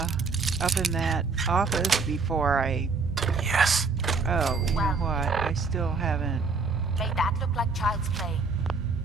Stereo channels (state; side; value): quieter; left; 4.5 dB